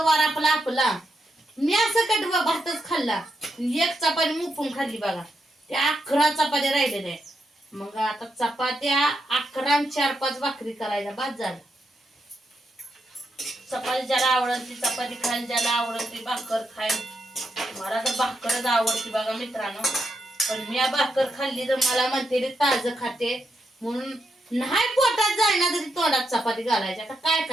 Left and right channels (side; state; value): both; normal; correlation 0.83